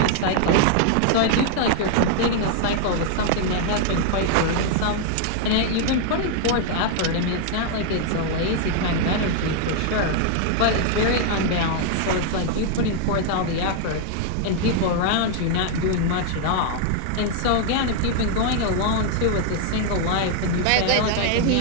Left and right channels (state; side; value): different; both; correlation 0.00